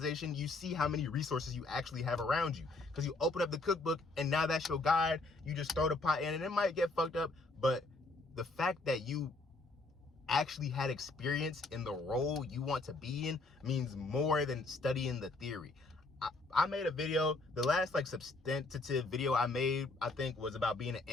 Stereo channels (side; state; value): right; quieter; 3.2 dB